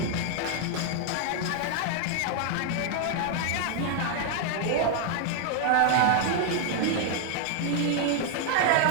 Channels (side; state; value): both; different; correlation 0.00